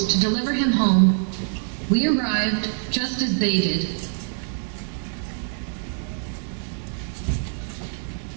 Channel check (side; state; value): left; silent; digital silence